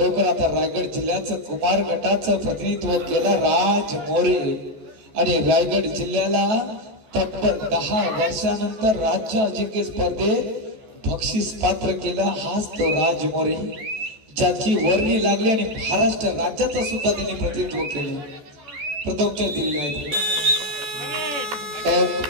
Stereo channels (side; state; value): left; late; 14 ms